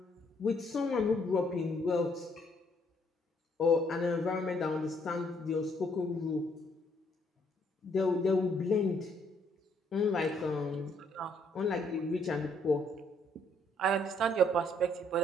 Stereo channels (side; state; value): both; normal; correlation 0.68